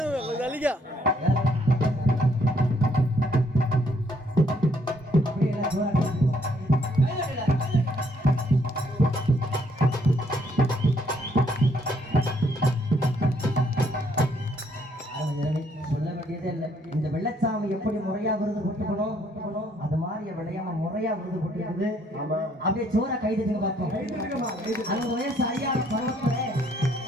சொல்ல வேண்டியதே இல்லை. இந்த வெள்ளச்சாமி எப்படி முறையா விருது போட்டுக்கணும் அது மாதிரி விளையாம முறையா விருது போட்டுக்குது. அப்படியே சோற கைதுங்க பார்ப்போம். அந்த வயசு அறியாத பருவத்துல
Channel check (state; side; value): normal; both; correlation 0.68